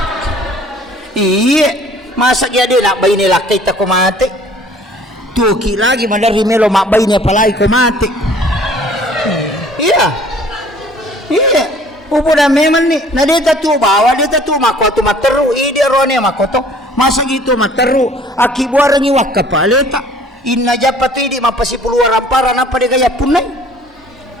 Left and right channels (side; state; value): both; normal; correlation 0.53